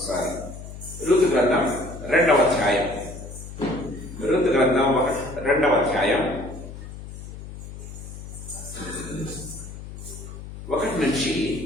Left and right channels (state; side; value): noise; left; hum, 12 dB below the sound